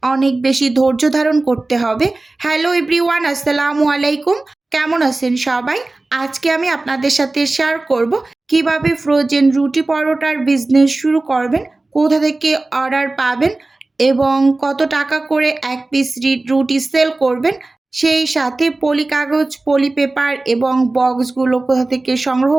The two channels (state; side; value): quieter; left; 3.1 dB